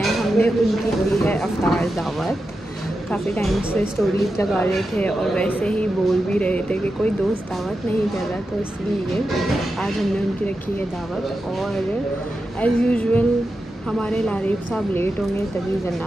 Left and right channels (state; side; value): normal; both; correlation 0.90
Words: हमने उनकी दी है अफ्तार दावत। काफ़ी टाइम से स्टोरीज लगा रहे थे और वैसे ही बोल भी रहे थे कि कोई दोस्त दावत नहीं कर रहा, तो इसलिए आज हमने उनकी रखी है दावत। और एज़ यूजुअल हमारे लारीफ साहब लेट होंगे, तभी